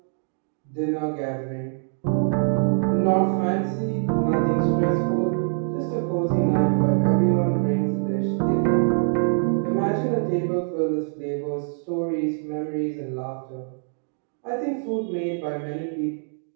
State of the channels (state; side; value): silent; left; 62 dB below the other